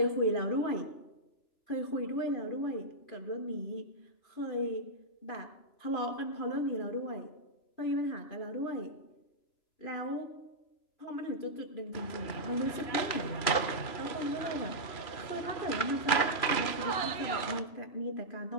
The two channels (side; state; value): right; late; 3.0 ms